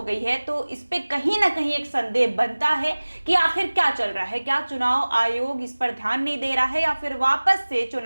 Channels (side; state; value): both; inverted; correlation -1.00